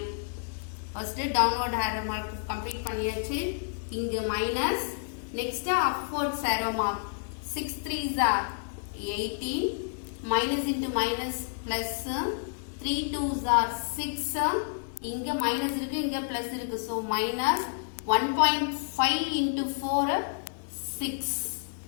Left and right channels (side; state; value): right; silent; 56 dB below the other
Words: First downward arrow mark complete பண்ணியாச்சு. இங்க minus next upward arrow mark 6 3s are 18 minus into minus plus 3 2s are 6. இங்க minus இருக்கு இங்க plus இருக்கு, so minus 1.5 into 4 6.